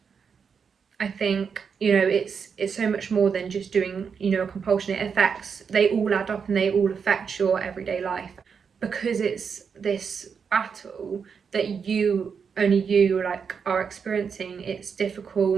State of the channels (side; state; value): left; quieter; 6.3 dB